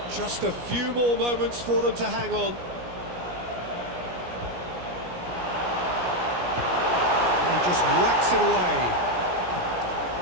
Just a few more moments for them to hang on. And he just whacks it away.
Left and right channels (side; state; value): left; late; 17 ms